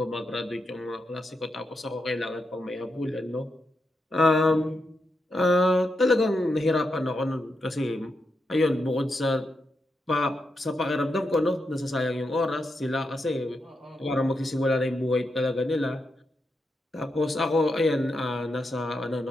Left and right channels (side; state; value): both; normal; correlation 0.85